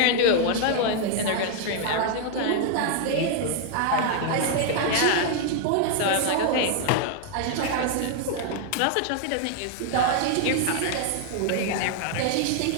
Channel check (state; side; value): different; both; correlation 0.00